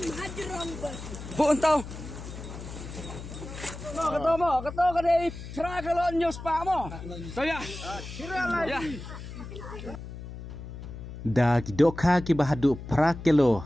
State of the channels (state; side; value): noise; left; hum, 11 dB below the sound